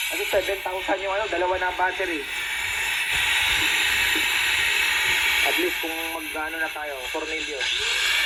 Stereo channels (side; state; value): both; identical; correlation 1.00